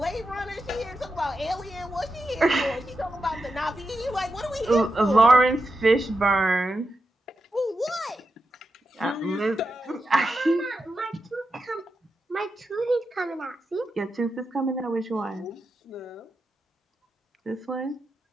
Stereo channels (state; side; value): normal; both; correlation 0.88